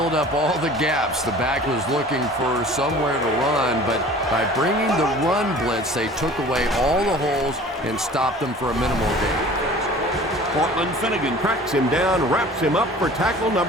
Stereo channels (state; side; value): normal; both; correlation 0.45